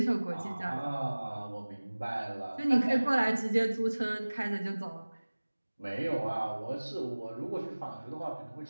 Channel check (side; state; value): both; inverted; correlation -1.00